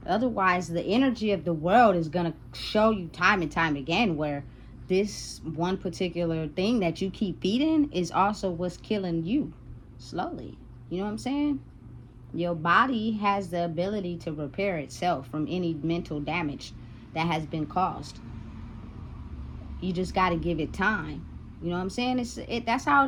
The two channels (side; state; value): both; identical; correlation 1.00